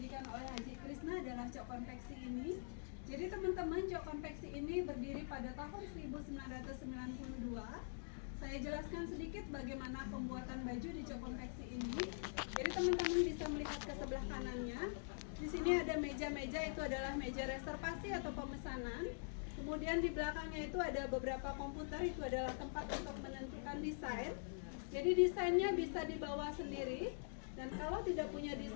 oleh Haji Krisna adalah Cok Konveksi ini. Jadi teman-teman, Cok Konveksi ini berdiri pada tahun 1992. Saya jelaskan sedikit bagaimana pembuatan baju di Cok Konveksi ini. Jadi teman-teman bisa melihat ke sebelah kanannya. Di sini ada meja-meja, itu adalah meja reservasi atau pemesanan. Kemudian di belakangnya itu ada beberapa komputer, itu adalah tempat untuk menentukan desain. Jadi desainnya bisa dibawa sendiri. Dan kalau tidak punya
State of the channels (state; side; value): silent; right; digital silence